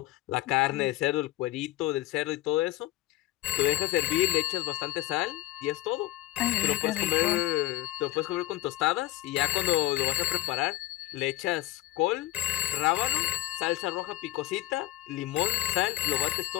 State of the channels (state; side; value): quieter; right; 16.1 dB